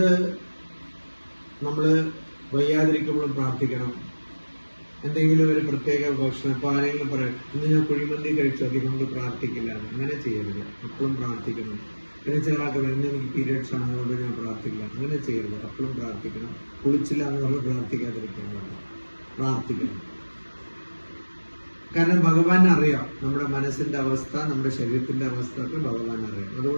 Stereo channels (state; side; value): inverted; both; correlation -1.00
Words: നമ്മൾ വയ്യാതിരിക്കുമ്പോഴും പ്രാർത്ഥിക്കണം. എന്തെങ്കിലും ഒരു പ്രത്യേക ഭക്ഷണം, ഇപ്പൊ ആരെങ്കിലും പറയും ഇന്ന് ഞാൻ കുഴിമന്തി കഴിച്ചു അതുകൊണ്ട് പ്രാർത്ഥിക്കില്ല, അങ്ങനെ ചെയ്യരുത്. എപ്പോഴും പ്രാർത്ഥിക്കണം. പിന്നെ ചില ആൾക്ക് ഇന്ന് എനിക്ക് പീരിയഡ്സ് ആണ് അതുകൊണ്ട് ഞാൻ പ്രാർത്ഥിക്കില്ല, അങ്ങനെ ചെയ്യരുത്. എപ്പോഴും പ്രാർത്ഥിക്കണം. കുളിച്ചില്ല എന്ന് പറഞ്ഞ് പ്രാർത്ഥിക്കാതിരിക്കാൻ പാടില്ല, പ്രാർത്ഥിക്കണം. കാരണം ഭഗവാൻ അറിയാം നമ്മുടെ മനസ്സിന്റെ അവസ്ഥ, നമ്മുടെ ശരീരത്തിന്റെ അവസ്ഥ ഒക്കെ ഭഗവാൻ അറിയാം.